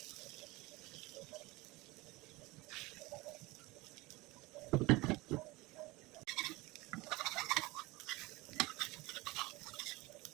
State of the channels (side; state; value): left; quieter; 22.0 dB